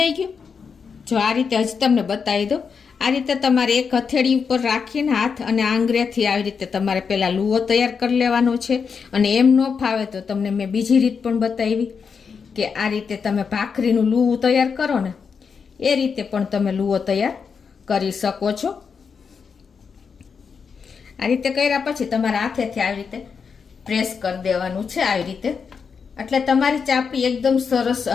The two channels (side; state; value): right; quieter; 5.9 dB